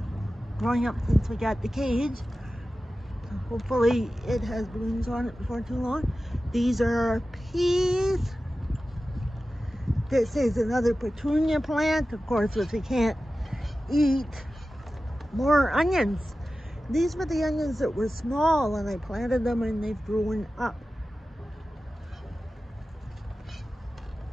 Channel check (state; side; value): normal; both; correlation 0.94